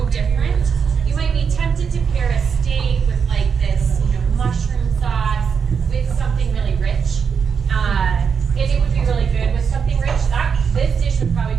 different, you might be tempted to pair a steak with like this, mushroom sauce with something really rich. And it would be really good with something rich. This dish would probably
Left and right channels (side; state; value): left; quieter; 6.4 dB